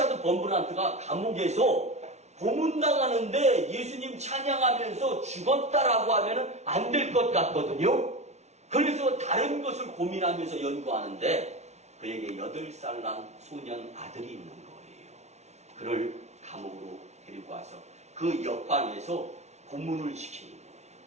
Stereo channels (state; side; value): late; left; 0.32 ms